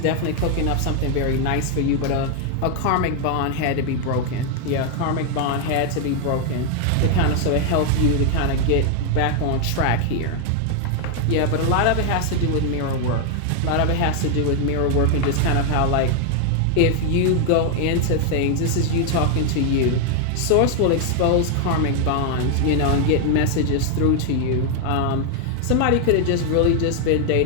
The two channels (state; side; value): different; both; correlation 0.00